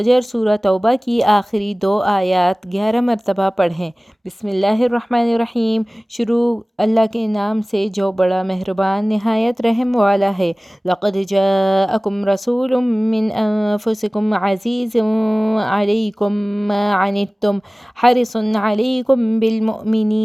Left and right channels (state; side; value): normal; both; correlation 0.98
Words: سورہ توبہ کی آخری 2 آیات 11 مرتبہ پڑھیں۔ بسم اللہ الرحمن الرحیم۔ شروع اللہ کے نام سے جو بڑا مہربان نہایت رحم والا ہے۔ لقد جاءکم رسول من انفسکم عزیز علیکم ما عنتم حرص علیکم